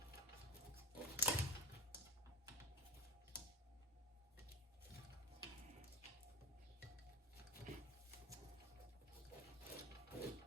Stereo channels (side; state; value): both; normal; correlation 0.28